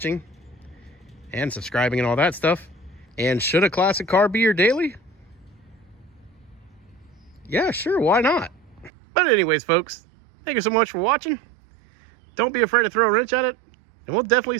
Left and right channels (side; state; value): left; drops out; at 8.9 s